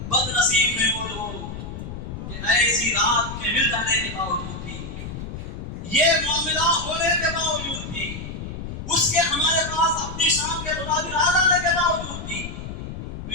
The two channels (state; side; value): noise; left; rumble, 8 dB below the sound